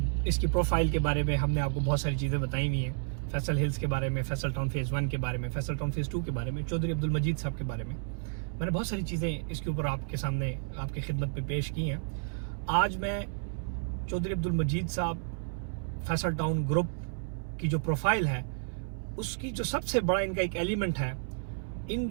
इसकी प्रोफाइल के बारे में हमने आपको बहुत सारी चीज़ें बताई हुई हैं। फैसल हिल्स के बारे में, फैसल टाउन फेज़ 1 के बारे में, फैसल टाउन फेज़ 2 के बारे में, चौधरी अब्दुल मजीद साहब के बारे में। मैंने बहुत सारी चीज़ें इसके ऊपर आपके सामने, आपकी खिदमत में पेश की हैं। आज मैं चौधरी अब्दुल मजीद साहब फैसल टाउन ग्रुप की जो प्रोफाइल है, उसकी जो सबसे बड़ा इनका एक एलिमेंट है,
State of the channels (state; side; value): silent; left; 57 dB below the other